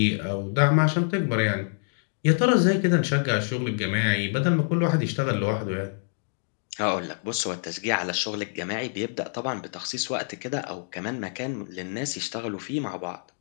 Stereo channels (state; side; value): silent; right; digital silence